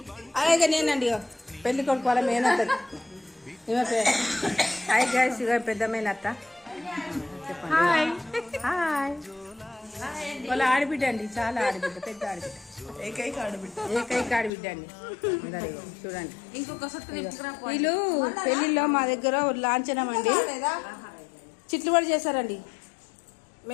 అలాగే నేనండి పెళ్లి కొడుకు వాళ్ళ మేనత్త. హాయ్ గైస్, ఇక పెద్ద మేనత్త. చెప్పండి. Hi hi. వాళ్ళ ఆడబిడ్డ అండి, చాలా ఆడబిడ్డ, పెద్ద ఆడబిడ్డ, ఏకైక ఆడబిడ్డ అండి. చూడండి, వీళ్ళు పెళ్లిలో మా దగ్గర లాంఛనం అండి చిట్లుబడి చేశారండి.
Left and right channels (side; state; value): right; drops out; at 14.5 s